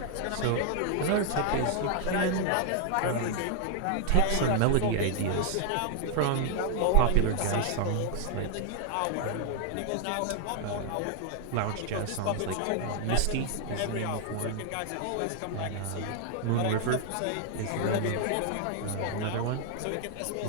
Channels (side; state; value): both; different; correlation 0.00